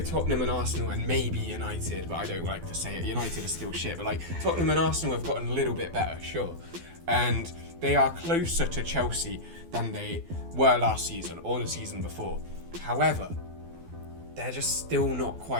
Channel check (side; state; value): left; late; 12 ms